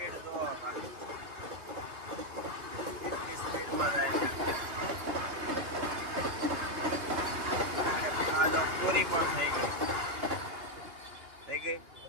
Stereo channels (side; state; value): left; late; 2.4 ms